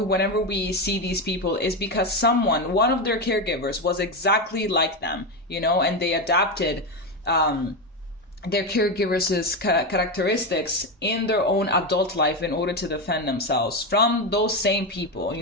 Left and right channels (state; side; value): normal; both; correlation 0.13